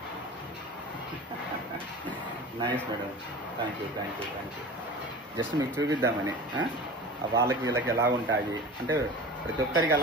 nice madam, thank you. Just మీకు చూపిద్దామని. వాళ్ళకి వీళ్ళకి ఎలా ఉంటాయి అంటే ప్రతి ఒక్కరికి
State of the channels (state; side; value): normal; both; correlation 0.35